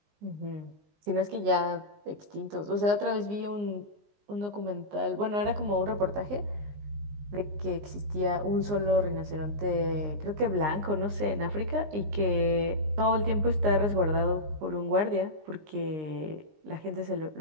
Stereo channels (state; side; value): late; left; 19 ms